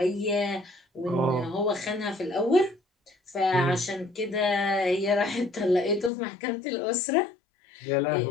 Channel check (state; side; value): drops out; right; at 6.1 s